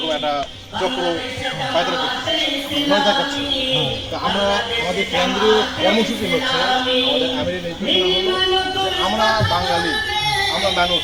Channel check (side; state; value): both; identical; correlation 1.00